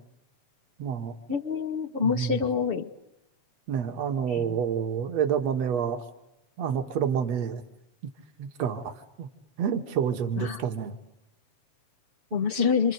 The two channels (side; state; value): left; late; 7.0 ms